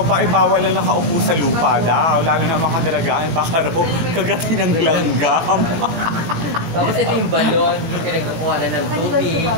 pa ay bawal lang nakaupo sa lupa daw. Lalo na mga dalagaan, baka raw kagatin ng langgam. Tapos ito yung balon, yung pinagkukuha na ng tubig.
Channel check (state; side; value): late; left; 18 ms